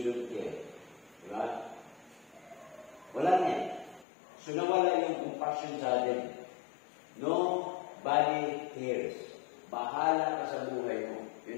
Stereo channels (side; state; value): right; drops out; at 4.0 s